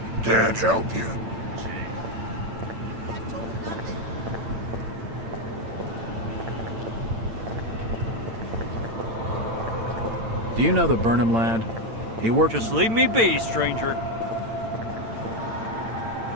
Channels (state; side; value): late; left; 8.9 ms